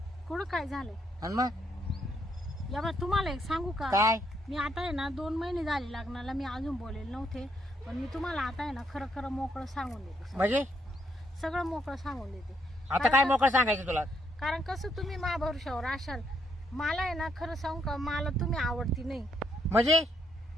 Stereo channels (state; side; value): normal; both; correlation 0.74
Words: कुठं काय झालंय? आणि मग या बा तुम्हाला एक सांगू का? काय? मी आता आहे ना 2 महिने झाले लग्नाला. मी अजून बोलेल नव्हते पण मी तुम्हाला आता आहे ना खरं खरं मोकळं सांगून देते. म्हणजे सगळं मोकळं सांगून देते. आता काय मोकळं सांगायचं तुला? कारण कसं तुम्ही मा भरोशावर असाल. मला आहे ना खरं सांगू का, मला तुम्ही आवडती नाही. म्हणजे